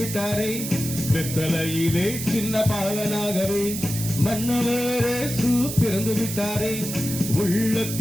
வெத்தலையிலே சின்ன பாலனாகவே மன்னவரே பிறந்து விட்டாரே.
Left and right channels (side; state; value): right; noise; hiss, 6 dB below the sound